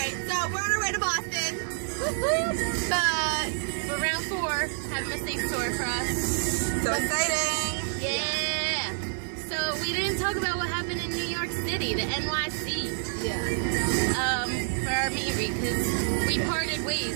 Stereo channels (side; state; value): left; silent; 59 dB below the other